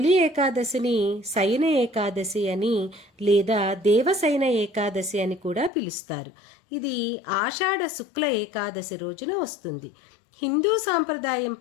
ఏకాదశిని శయన ఏకాదశి అని లేదా దేవశయన ఏకాదశి అని కూడా పిలుస్తారు. ఇది ఆషాఢ శుక్ల ఏకాదశి రోజున వస్తుంది. హిందూ సాంప్రదాయం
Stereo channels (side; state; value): right; drops out; at 5.7 s